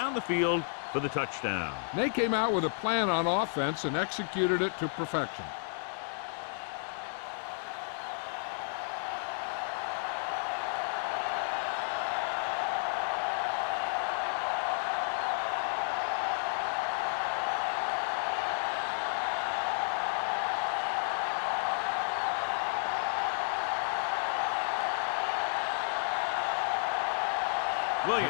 the field for the touchdown. They came out with a plan on offense and executed it to perfection.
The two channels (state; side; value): silent; right; digital silence